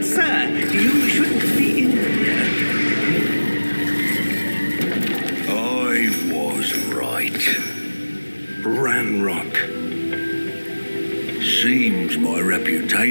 sir, you shouldn't be in here. I was right. Ranrock. Seems my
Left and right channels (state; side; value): inverted; both; correlation -1.00